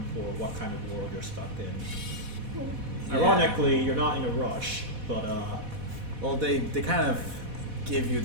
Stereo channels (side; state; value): left; late; 4.1 ms